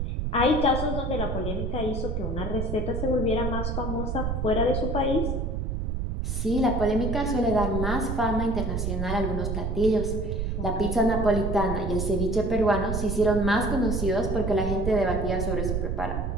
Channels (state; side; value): noise; right; rumble, 2 dB below the sound